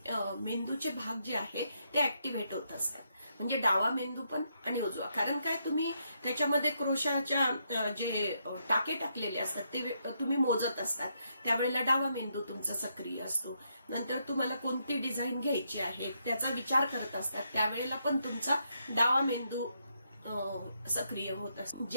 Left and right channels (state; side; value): inverted; both; correlation -0.78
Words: मेंदूचे भाग जे आहे ते ऍक्टिव्हेट होत असतात. म्हणजे डावा मेंदू पण आणि उजवा. कारण काय, तुम्ही त्याच्यामध्ये क्रोशाच्या जे टाके टाकलेले असतात ते तुम्ही मोजत असतात. त्यावेळेला डावा मेंदू तुमचा सक्रिय असतो. नंतर तुम्हाला कोणती डिझाईन घ्यायची आहे त्याचा विचार करत असतात, त्यावेळेला पण तुमचा डावा मेंदू सक्रिय होत असतो.